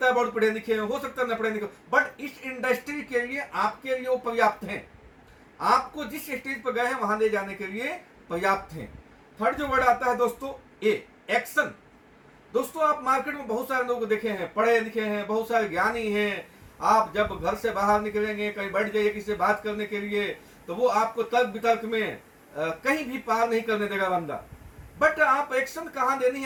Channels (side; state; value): both; identical; correlation 1.00